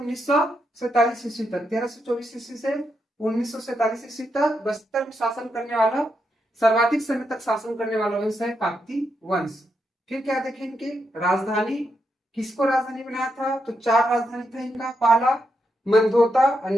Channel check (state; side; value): normal; both; correlation 0.82